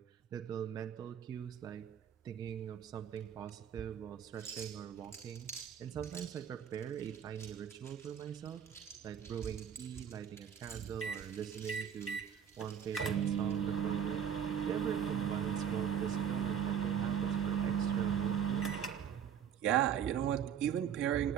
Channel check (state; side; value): quieter; left; 8.4 dB